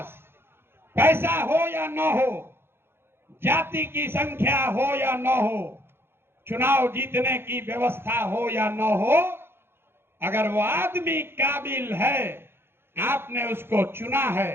पैसा हो या न हो, जाति की संख्या हो या न हो, चुनाव जीतने की व्यवस्था हो या न हो, अगर वो आदमी काबिल है, आपने उसको चुना है,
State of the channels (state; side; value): late; left; 0.11 ms